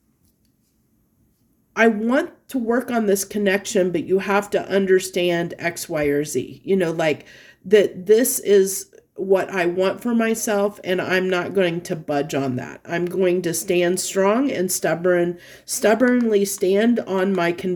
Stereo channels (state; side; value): identical; both; correlation 1.00